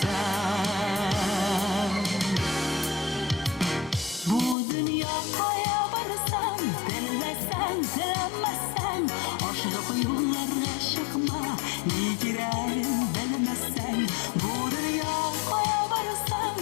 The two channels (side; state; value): right; drops out; at 4.5 s